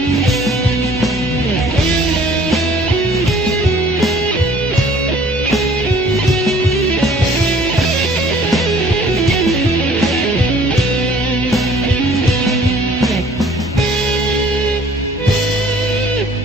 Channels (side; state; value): both; normal; correlation 0.54